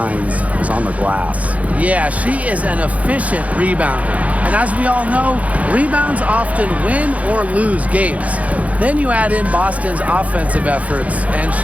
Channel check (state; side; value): late; left; 0.068 ms